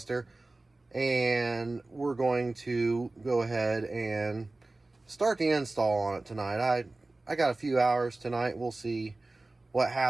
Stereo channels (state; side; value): quieter; left; 3.0 dB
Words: and we're going to go ahead and start the install on it tonight. I got a few hours tonight. We'll see what